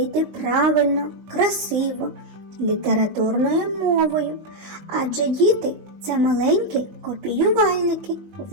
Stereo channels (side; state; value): left; late; 20 ms